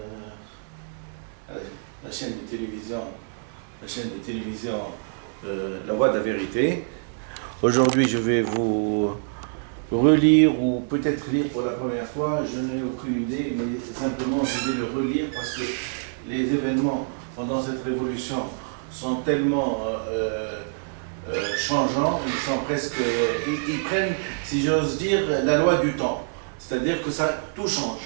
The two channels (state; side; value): silent; left; digital silence